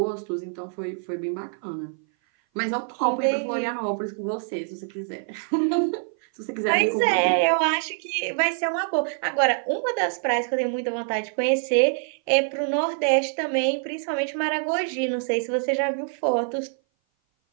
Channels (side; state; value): left; silent; 57 dB below the other